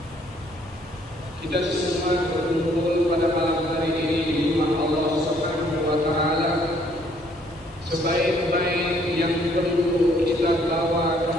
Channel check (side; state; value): both; normal; correlation 0.64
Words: Kita semua berkumpul pada malam hari ini di rumah Allah Subhanahu wa Ta'ala. Sebaik-baik yang perlu kita bawa